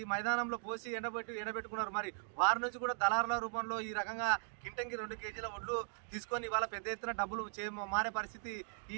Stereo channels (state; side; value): silent; left; 52 dB below the other